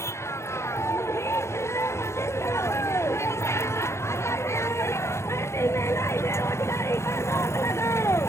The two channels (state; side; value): late; right; 0.13 ms